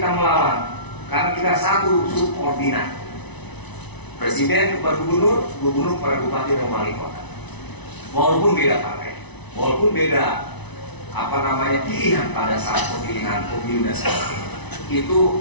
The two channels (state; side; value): late; right; 1.0 ms